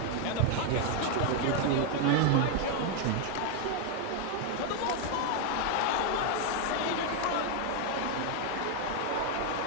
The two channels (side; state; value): both; different; correlation 0.01